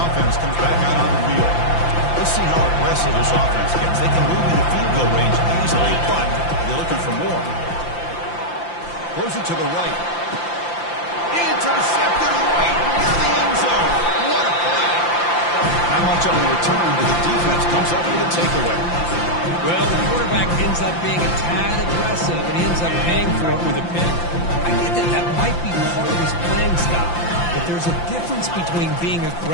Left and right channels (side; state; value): right; late; 5.8 ms